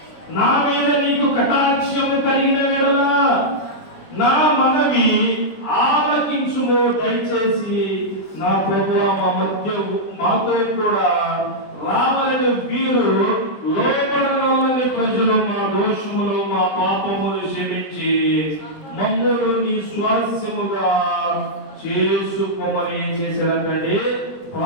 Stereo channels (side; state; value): right; late; 20 ms